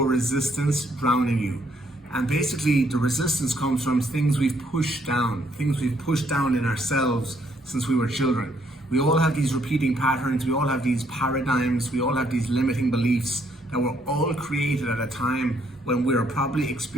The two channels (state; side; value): normal; both; correlation 0.70